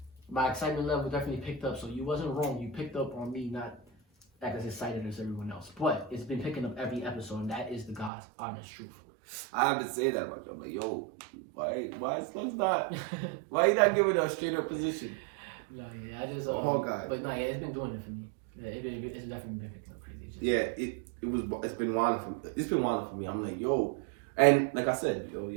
my excitement level definitely picked up. So you wasn't wrong. You picked up on me not as excited as everyone else, but it's been picking up every episode, and that is the God's honest truth. I have to say that about you, but yo, why Slug's not? Why you not giving a straight up position? No, yeah, I just Hawkeye. But no, yeah, it's been doing it for me. Yeah, it's definitely been picking up crazy. It's been wild for me. It's been wild for me. I'm like, yo, and like I said, yo,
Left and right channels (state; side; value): drops out; left; at 8.1 s